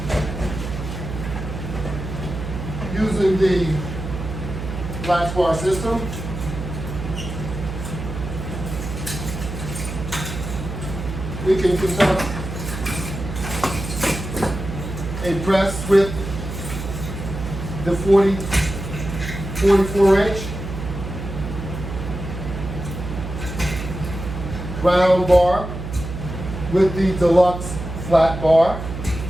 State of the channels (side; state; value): right; noise; hum, 7 dB below the sound